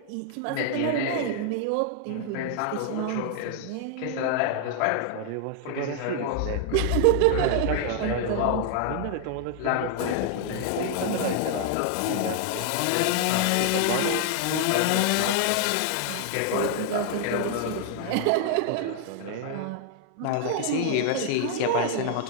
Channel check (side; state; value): both; different; correlation 0.00